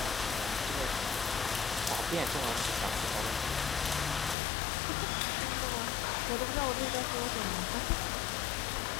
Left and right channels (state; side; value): drops out; right; at 4.4 s